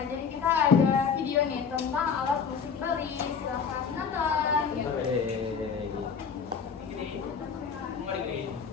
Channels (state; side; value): quieter; right; 6.3 dB